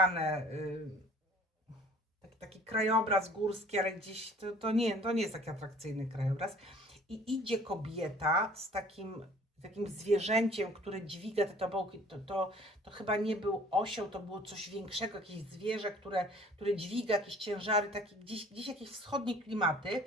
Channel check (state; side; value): normal; both; correlation 0.51